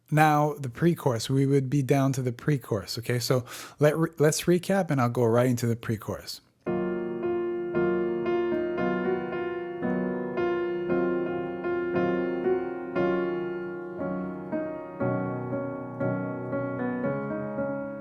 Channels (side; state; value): both; identical; correlation 1.00